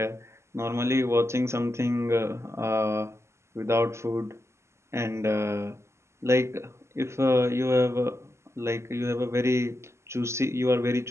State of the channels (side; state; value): left; late; 0.13 ms